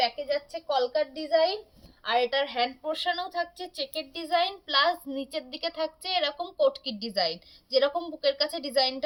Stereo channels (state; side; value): identical; both; correlation 1.00